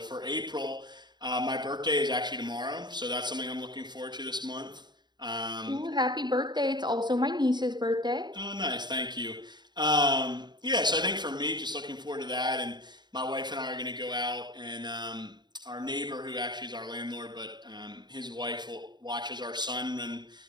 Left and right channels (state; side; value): late; left; 0.21 ms